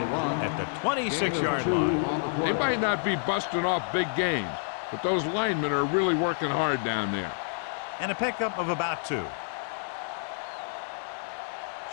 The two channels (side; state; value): right; silent; 59 dB below the other